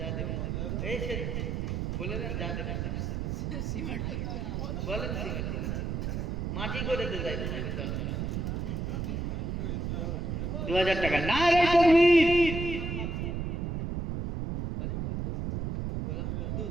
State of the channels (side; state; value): right; noise; rumble, 2 dB below the sound